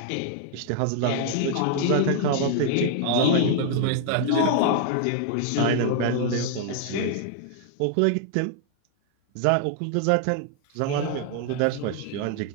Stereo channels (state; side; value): different; both; correlation -0.01